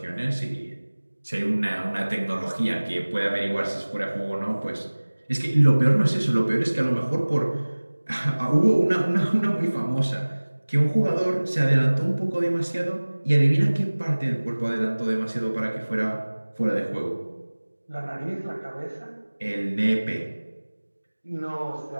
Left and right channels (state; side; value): inverted; both; correlation -1.00